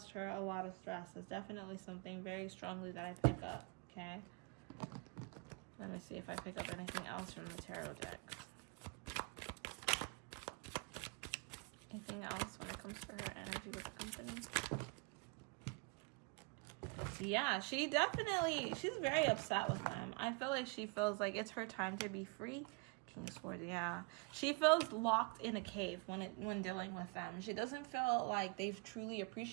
her a lot of stress. It's definitely something very strongly that I pick up. Okay, let me see if I pick up anything else from the tarot decks. Anything else when it comes to her energy with the company? Yeah, she's very upset with them. I feel like she feels like it's her time to be free. King of Swords, yeah. She feels locked in a cave when dealing with them. She doesn't feel like they've truly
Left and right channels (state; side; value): quieter; left; 30.2 dB